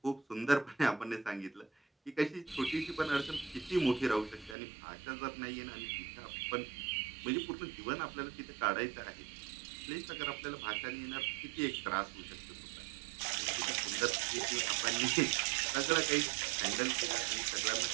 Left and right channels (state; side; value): drops out; left; at 4.5 s